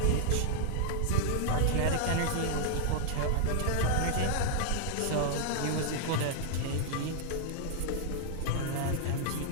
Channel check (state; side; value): different; both; correlation -0.01